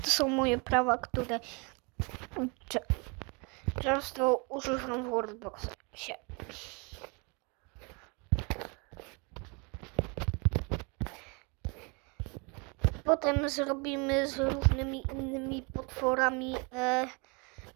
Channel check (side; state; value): left; quieter; 31.7 dB